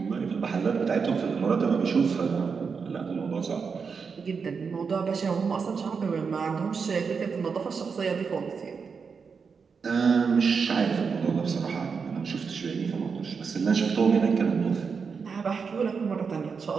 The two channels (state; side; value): quieter; left; 5.6 dB